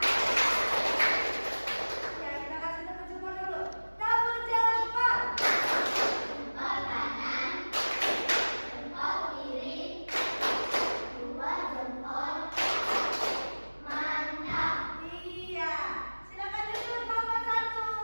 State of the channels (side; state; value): both; inverted; correlation -1.00